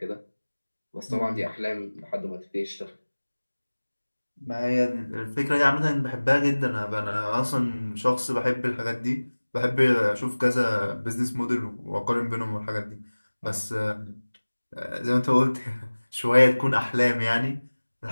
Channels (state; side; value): inverted; both; correlation -1.00